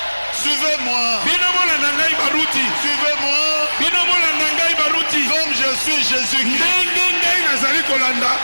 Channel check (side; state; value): both; inverted; correlation -1.00